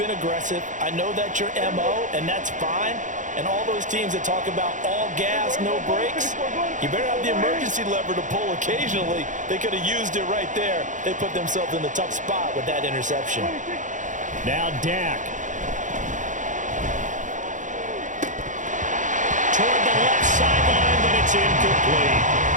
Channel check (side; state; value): left; late; 0.36 ms